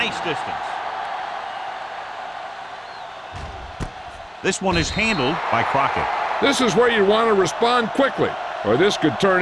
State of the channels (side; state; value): both; identical; correlation 1.00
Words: distance. This one is handled by Crockett. This is where you want to respond quickly, or this could turn